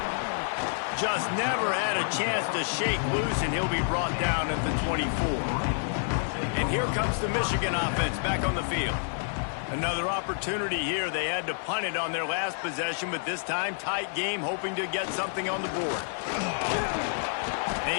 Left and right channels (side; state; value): right; silent; digital silence